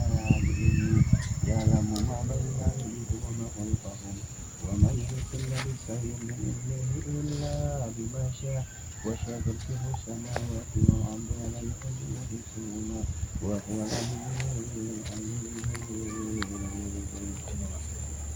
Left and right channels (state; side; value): identical; both; correlation 1.00